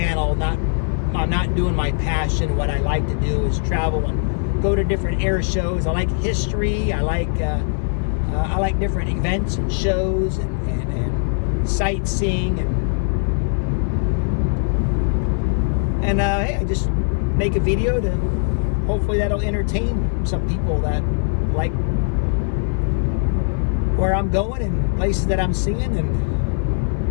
I'm not doing my passion. What I like to do is travel and go to different air shows. I like history. I like different events and shows and sightseeing and hey, I just make a video to hopefully that'll entertain some people that like where I'm going and places that I'm seeing and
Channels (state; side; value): silent; right; digital silence